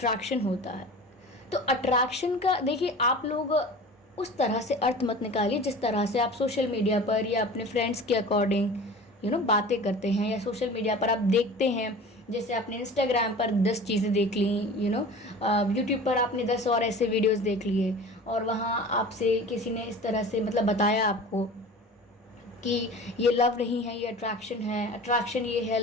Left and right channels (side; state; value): both; normal; correlation 0.39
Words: होता है, तो अट्रैक्शन का देखिए, आप लोग उस तरह से अर्थ मत निकालिए जिस तरह से आप सोशल मीडिया पर या अपने फ्रेंड्स के अकॉर्डिंग बातें करते हैं, या सोशल मीडिया पर आप देखते हैं, जैसे आपने इंस्टाग्राम पर 10 चीज़ें देख ली, यूट्यूब पर आपने 10 और ऐसे वीडियोस देख लिए, और वहाँ आपसे किसी ने इस तरह से मतलब बताया आपको कि ये लव नहीं है, ये अट्रैक्शन है, अट्रैक्शन ये है,